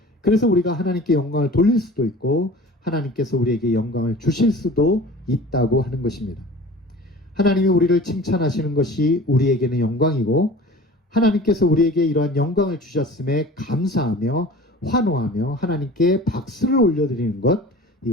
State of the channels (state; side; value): normal; both; correlation 0.41